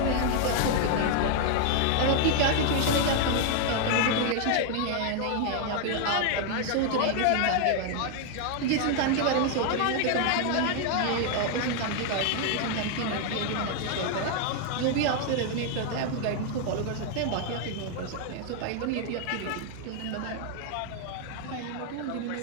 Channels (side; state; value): both; different; correlation 0.00